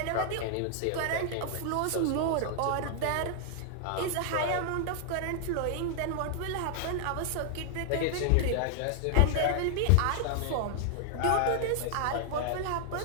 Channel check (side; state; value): both; different; correlation 0.00